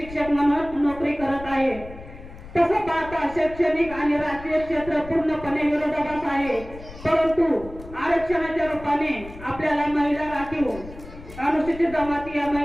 म्हणून नोकरी करत आहे. तसं पाहता शैक्षणिक आणि राजकीय क्षेत्र पूर्णपणे विरोधाभास आहे, परंतु आरक्षणाच्या रूपाने आपल्याला महिला राखीव अनुसूचित जमाती या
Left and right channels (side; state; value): left; noise; rumble, 15 dB below the sound